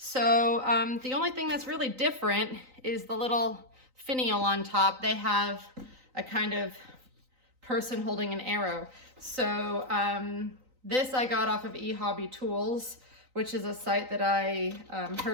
the only thing that's really different is the little finial on top. They have a kind of person holding an arrow. So this I got off of eHobby Tools, which is a site that I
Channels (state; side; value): late; left; 3.9 ms